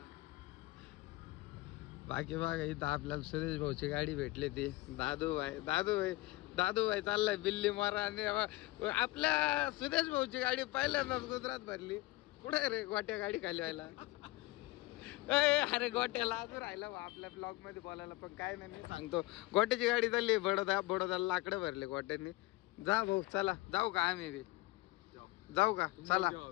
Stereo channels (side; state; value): right; quieter; 20.6 dB